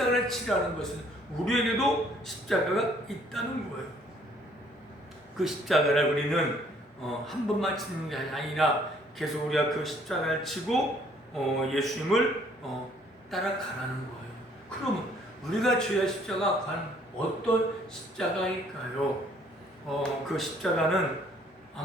치라는 것은 우리에게도 십자가가 있다는 거예요. 그 십자가를 우리는 한 번만 치는 게 아니라 계속 우리가 그 십자가를 치고 예수님을 따라가라는 거예요. 그러면 우리가 져야 십자가 과연 어떤 십자가일까요? 그 십자가는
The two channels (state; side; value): normal; both; correlation 0.62